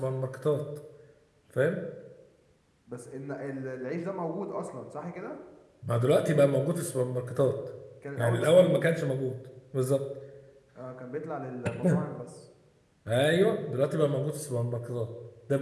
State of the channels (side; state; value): both; identical; correlation 1.00